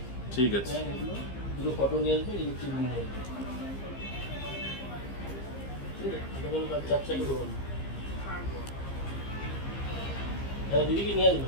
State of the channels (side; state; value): right; late; 15 ms